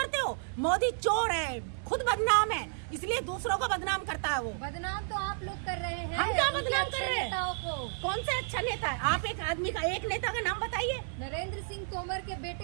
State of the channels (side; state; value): left; silent; digital silence